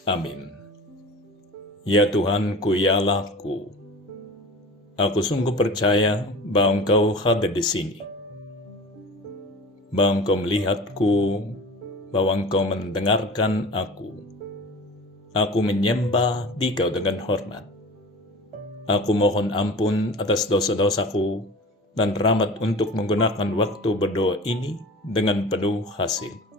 Amin. Ya Tuhanku, ya Allahku, aku sungguh percaya bahwa Engkau hadir di sini, bahwa Engkau melihatku, bahwa Engkau mendengarkan aku. Aku menyembah Dikau dengan hormat. Aku mohon ampun atas dosa-dosaku dan rahmat untuk menggunakan waktu berdoa ini dengan penuh hasil.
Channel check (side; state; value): both; normal; correlation 0.38